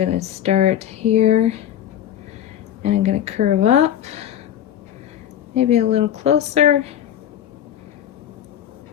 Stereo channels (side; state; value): right; quieter; 10.7 dB